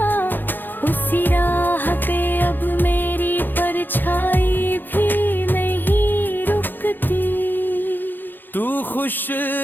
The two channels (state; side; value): late; right; 0.091 ms